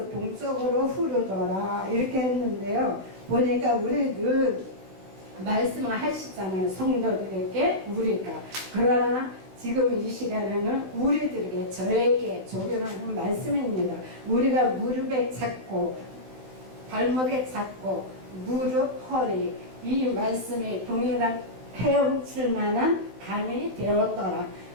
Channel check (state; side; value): late; left; 15 ms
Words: 동쪽으로 흐르더라 이렇게 했는데요. 보니까 우리 늘 말씀을 하시잖아요. 성도들에게 우리가. 그러나 지금 이 시간에는 우리들에게, 저에게 적용하는 말씀입니다. 우리가 무릎에 잡고 발목에 잡고 무릎, 허리, 이 말씀이 동일한 헤엄칠 만한 강이 되었더라.